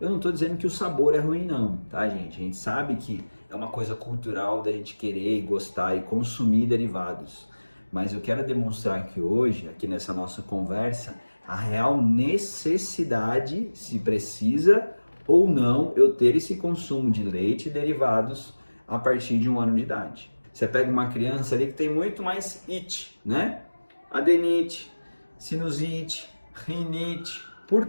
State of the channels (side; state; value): both; inverted; correlation -1.00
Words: não estou dizendo que o sabor é ruim não, tá gente? A gente sabe que é uma coisa cultural da gente querer e gostar e consumir derivados. Mas eu quero demonstrar aqui hoje, aqui nessa nossa conversa, a real necessidade, se precisa ou não, eu ter esse consumo de leite e derivados a partir de 1 ano de idade. Você pega uma criança ali que tem muito mais it, né? Adenite, sinusite, rinite. Por